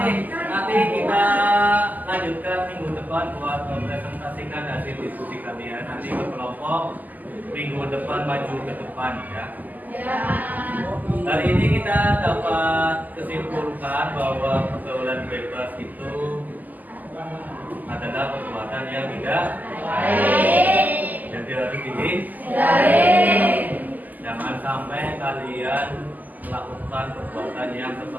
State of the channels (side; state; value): left; late; 0.082 ms